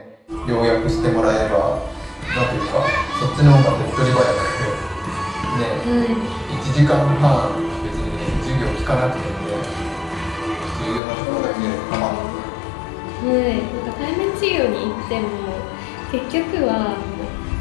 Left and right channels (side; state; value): right; drops out; at 11.0 s